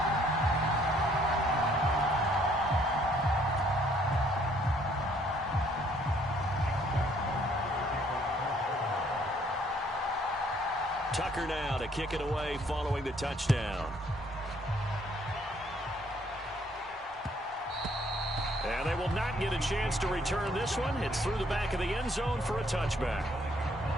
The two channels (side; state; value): both; normal; correlation 0.64